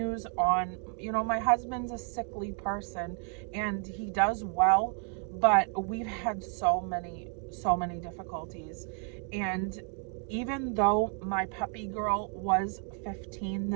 on. My husband's a sickly person and he does well, but we've had so many difficulties. And even though my puppy girl was 15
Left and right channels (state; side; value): quieter; left; 38.8 dB